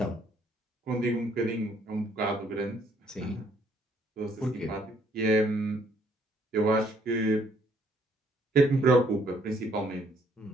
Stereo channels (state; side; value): normal; both; correlation 0.66